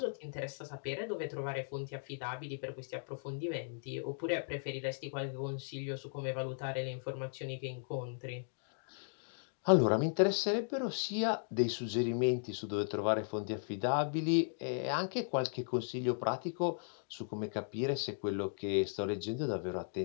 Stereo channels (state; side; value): silent; right; digital silence